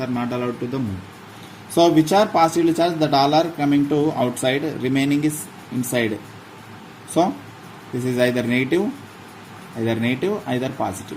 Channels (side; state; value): both; identical; correlation 1.00